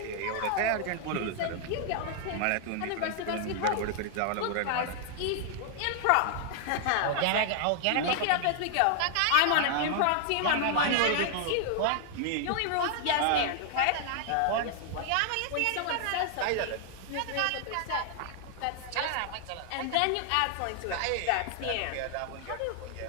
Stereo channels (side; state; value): both; different; correlation 0.00